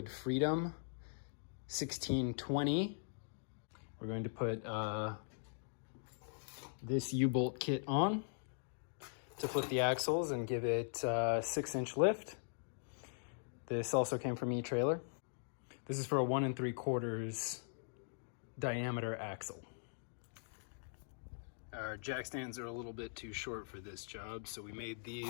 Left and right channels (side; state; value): right; silent; digital silence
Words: Freedom 1620. We're going to put this U-bolt kit on to flip the axles and give it 6-inch lift. This also came from E-Trailer. This is for a 1 3/4 diameter axle. Our jack stands are a little bit too short for this job, so we made